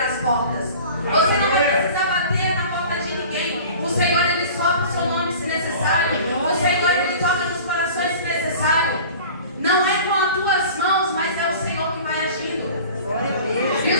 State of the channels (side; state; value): both; inverted; correlation -0.42